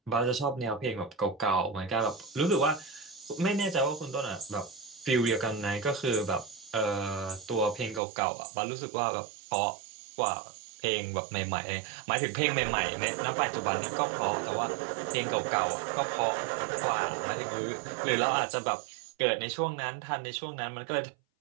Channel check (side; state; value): left; drops out; at 8.0 s